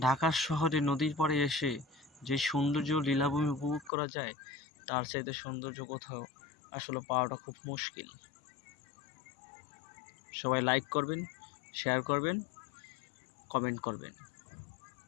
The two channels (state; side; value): drops out; right; at 3.9 s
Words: ঢাকা শহরে নদীর পাড়ে এসে যে সৌন্দর্য লীলাভূমি উপভোগ করা যায়, তার চাইতে সৌন্দর্য কোথাও আসলে পাওয়াটা খুব মুশকিল। সবাই লাইক করবেন, শেয়ার করবেন, কমেন্ট করবেন।